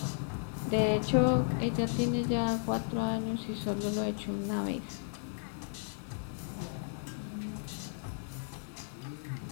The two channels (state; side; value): silent; right; digital silence